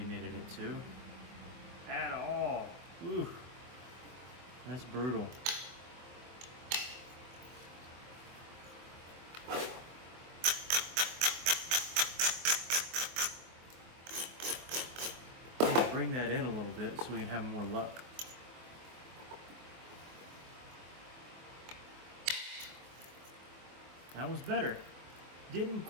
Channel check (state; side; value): late; left; 24 ms